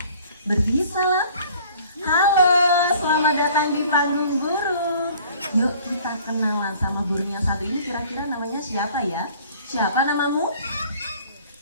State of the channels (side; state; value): both; inverted; correlation -0.52